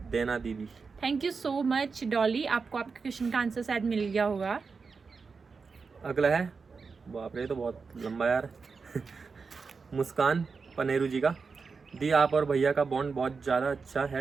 देना दीदी। Thank you so much Dolly, आपको आपके क्वेश्चन का आंसर शायद मिल गया होगा। अगला है, बाप रे ये तो बहुत लंबा यार मुस्कान पनेरू जी का। दी, आप और भैया का बॉन्ड बहुत ज़्यादा अच्छा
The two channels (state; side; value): quieter; left; 4.9 dB